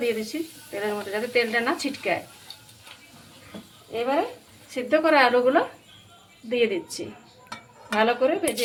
দিয়ে দিচ্ছি তেলের মধ্যে, যাতে তেলটা না ছিটকায়। এবারে সিদ্ধ করা আলুগুলো দিয়ে দিচ্ছি, ভালো করে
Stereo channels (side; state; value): both; identical; correlation 1.00